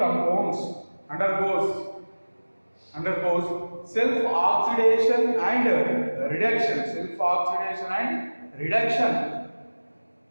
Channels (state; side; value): inverted; both; correlation -1.00